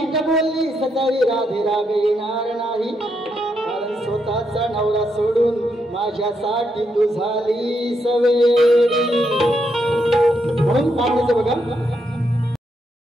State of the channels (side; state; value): both; normal; correlation 0.80